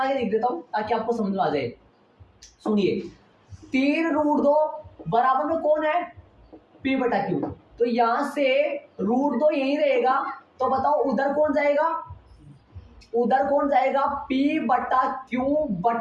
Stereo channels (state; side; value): identical; both; correlation 1.00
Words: के लिख देता हूं ताकि आपको समझ में आ जाए। सुनिए 3√2 बराबर में कौन है, p बटा q, तो यहां से √2 यही रहेगा, तो बताओ उधर कौन जाएगा, उधर कौन जाएगा, p बटा q